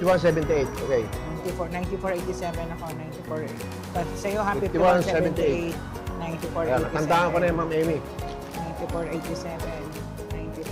Okay. 9487 ako. 94. Sa'yo ha, 5178. 5178. 9487. Ayan, tandaan ko na yung Ma'am Amy. 9487.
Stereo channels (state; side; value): identical; both; correlation 1.00